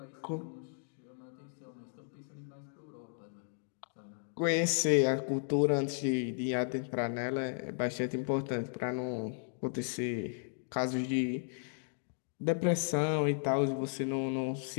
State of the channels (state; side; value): silent; right; digital silence